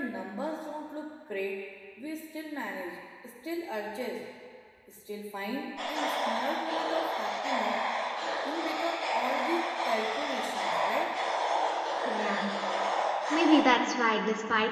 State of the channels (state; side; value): identical; both; correlation 1.00